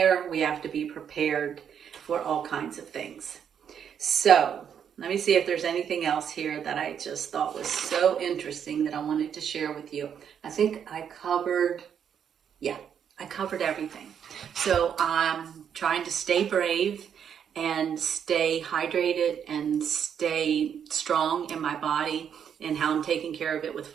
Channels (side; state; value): left; quieter; 8.2 dB